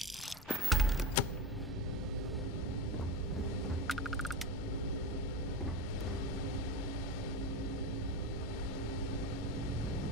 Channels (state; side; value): normal; both; correlation 0.21